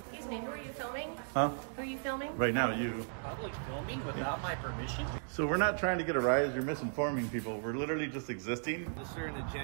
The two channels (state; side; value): silent; left; digital silence